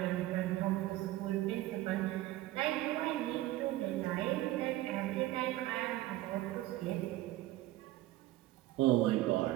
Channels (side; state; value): left; quieter; 16.2 dB